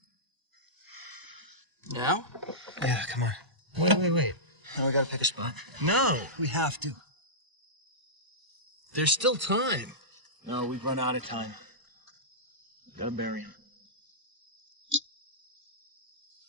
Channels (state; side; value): late; left; 1.0 ms